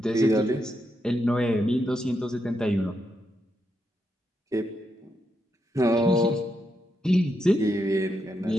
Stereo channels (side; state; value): both; normal; correlation 0.82